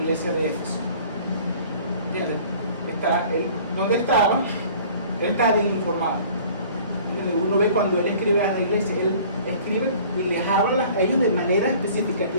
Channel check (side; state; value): both; inverted; correlation -0.49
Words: iglesia de Éfeso? ¿Entiendes? ¿Dónde estaba? Él está bien informado. ¿Entiendes? Uno ve cuando él escribe a la iglesia, él escribe y les habla a ellos de manera específica.